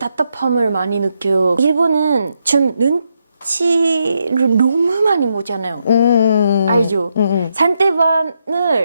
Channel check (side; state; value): both; inverted; correlation -0.80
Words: 많이 느껴요. 일본은 좀 눈치를 너무 많이 보잖아요. 알죠?